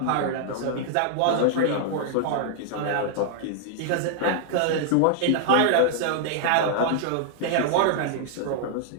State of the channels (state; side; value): different; both; correlation -0.01